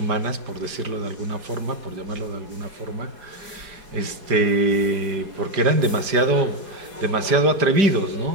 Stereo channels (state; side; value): late; left; 5.0 ms